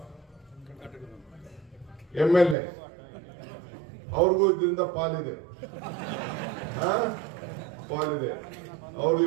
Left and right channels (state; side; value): drops out; left; at 2.6 s